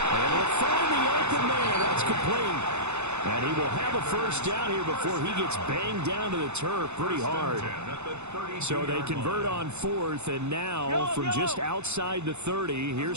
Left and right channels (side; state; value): left; late; 0.82 ms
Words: And we'll find the open man. That's complete. And he will have a first down here before he gets banged down to the turf pretty hard. So they convert on 4th, and now from just outside the 30,